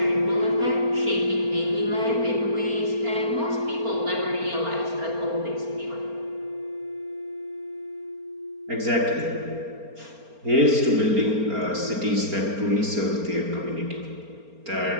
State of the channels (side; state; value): left; late; 4.3 ms